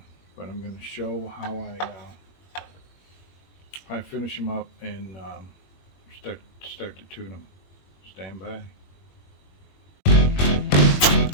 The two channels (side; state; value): right; late; 21 ms